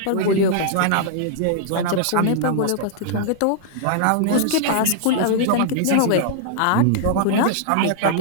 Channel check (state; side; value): different; both; correlation -0.01